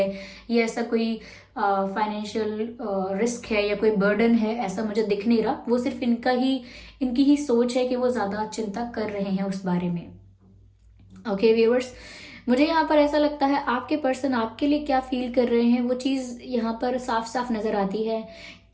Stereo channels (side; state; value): both; identical; correlation 1.00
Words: या ऐसा कोई फाइनेंशियल रिस्क है या कोई बर्डन है, ऐसा मुझे दिख नहीं रहा। वो सिर्फ इनकी ही सोच है कि वो ज़्यादा चिंता कर रहे हैं उस बारे में। ओके व्यूअर्स, मुझे यहाँ पर ऐसा लगता है आपके पर्सन आपके लिए क्या फील कर रहे हैं, वो चीज़ यहाँ पर साफ साफ नज़र आती है